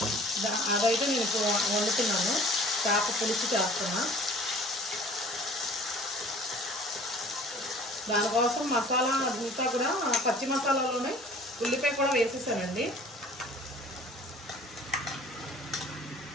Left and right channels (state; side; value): normal; both; correlation 0.49